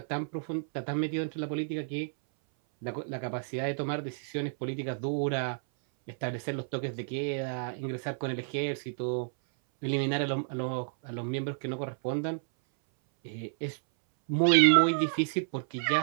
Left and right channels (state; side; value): silent; left; 57 dB below the other